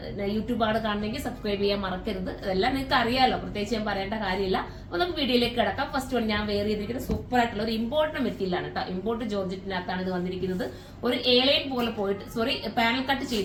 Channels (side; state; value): both; identical; correlation 1.00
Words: യൂട്യൂബാണ് കാണണമെങ്കിൽ സബ്സ്ക്രൈബ് ചെയ്യാൻ മറക്കരുത്. അതെല്ലാം നിങ്ങൾക്ക് അറിയാലോ, പ്രത്യേകിച്ച് ഞാൻ പറയേണ്ട കാര്യമില്ല. അപ്പൊ നമുക്ക് വീഡിയോയിലേക്ക് കിടക്കാം. ഫസ്റ്റ് വൺ ഞാൻ വെയർ ചെയ്തിരിക്കുന്നത് സൂപ്പർ ആയിട്ടുള്ള ഒരു ഇമ്പോർട്ട് മെറ്റീരിയലാണ് കേട്ടോ. ഇമ്പോർട്ട് ജോർജറ്റിനകത്താണ് ഇത് വന്നിരിക്കുന്നത്. ഒരു എലൈൻ പോലെ പോയിട്ട് പാനൽ കട്ട്